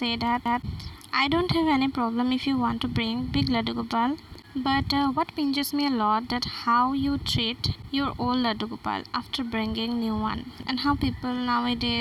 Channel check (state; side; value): identical; both; correlation 1.00